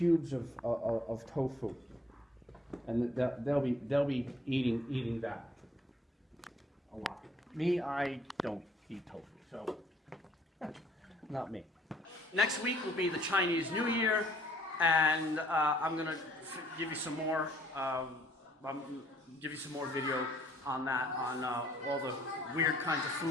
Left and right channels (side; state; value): both; normal; correlation 0.62